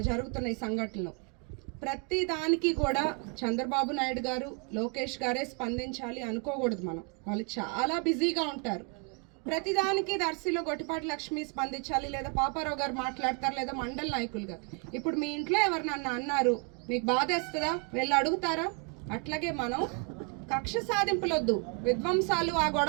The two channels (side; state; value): left; quieter; 34.5 dB